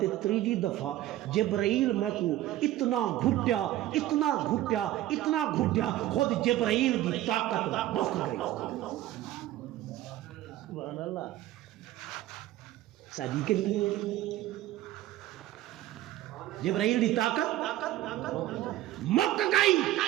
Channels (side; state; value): left; quieter; 14.6 dB